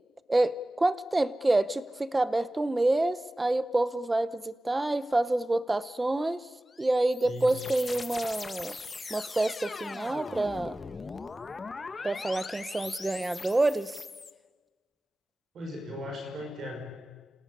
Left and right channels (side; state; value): both; normal; correlation 0.97